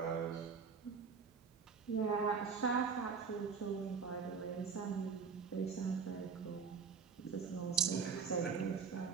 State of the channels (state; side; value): quieter; left; 5.8 dB